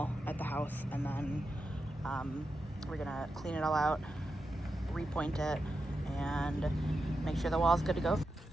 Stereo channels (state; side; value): normal; both; correlation 0.88